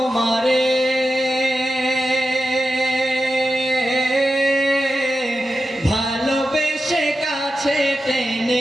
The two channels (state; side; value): normal; both; correlation 0.91